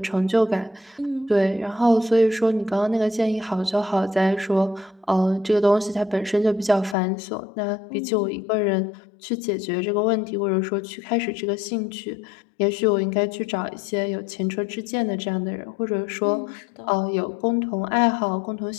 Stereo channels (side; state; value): right; drops out; at 7.0 s